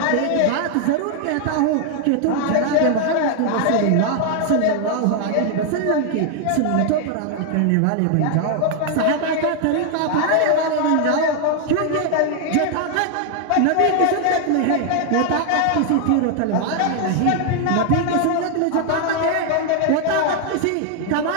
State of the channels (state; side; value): different; both; correlation 0.00